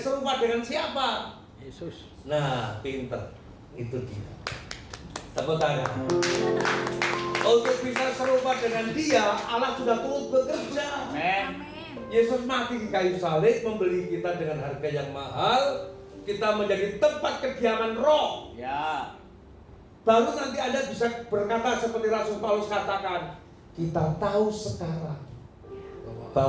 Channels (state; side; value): identical; both; correlation 1.00